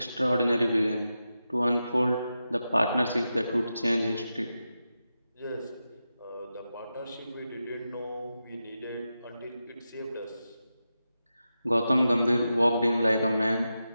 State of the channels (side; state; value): both; inverted; correlation -0.90